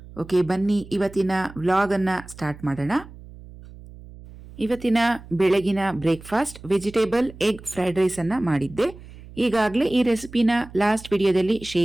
ಓಕೆ, ಬನ್ನಿ ಇವತ್ತಿನ ವ್ಲಾಗನ್ನು ಸ್ಟಾರ್ಟ್ ಮಾಡೋಣ. ಇವತ್ತಿನ ಬೆಳಗಿನ ಬ್ರೇಕ್ಫಾಸ್ಟ್ ವೆಜಿಟೇಬಲ್ ಎಗ್ ಫ್ರೈಡ್ ರೈಸನ್ನು ಮಾಡಿದ್ದೆ. ಈಗಾಗಲೇ ಈ ರೆಸಿಪಿನ ಲಾಸ್ಟ್ ವಿಡಿಯೋದಲ್ಲಿ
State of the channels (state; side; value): noise; right; hum, 18 dB below the sound